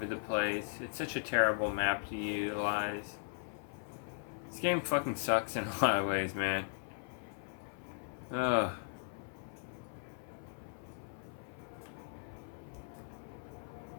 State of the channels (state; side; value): silent; right; 52 dB below the other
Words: the place. It's such a terrible map to utilize. This game fucking sucks in a lot of ways, man. Ugh.